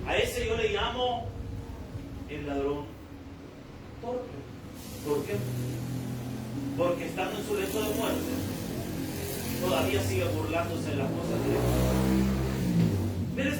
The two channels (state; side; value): identical; both; correlation 1.00